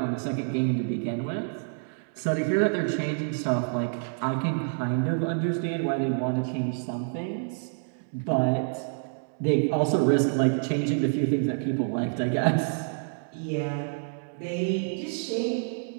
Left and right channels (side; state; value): left; silent; digital silence